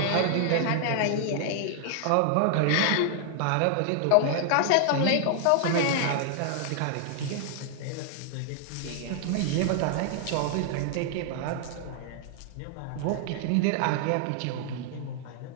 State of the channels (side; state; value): both; different; correlation 0.00